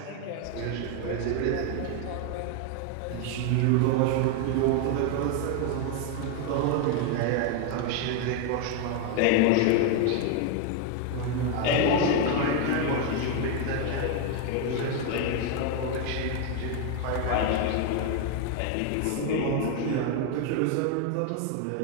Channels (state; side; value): different; both; correlation 0.01